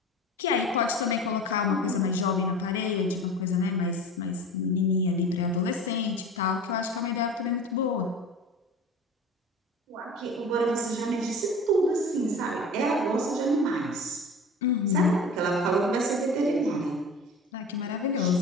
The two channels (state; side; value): normal; both; correlation 0.36